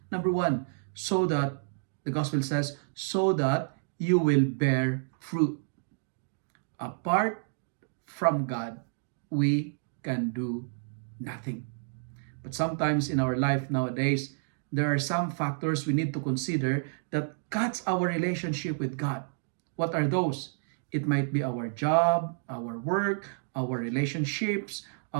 Number 1, so that, the gospel says, so that you will bear fruit. Apart from God, we can do nothing. But sometimes in our life nowadays, there are some factors we need to consider that cuts our relationship with God. What are those? It might be our job, our work, our relationships,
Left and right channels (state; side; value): silent; left; digital silence